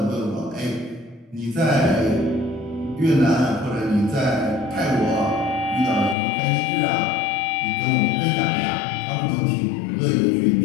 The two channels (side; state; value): right; drops out; at 6.2 s